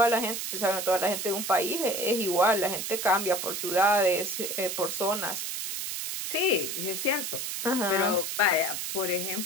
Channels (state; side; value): noise; right; hiss, 4 dB below the sound